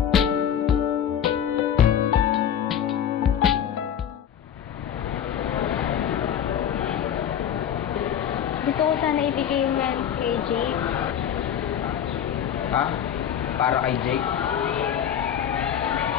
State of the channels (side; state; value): right; quieter; 9.2 dB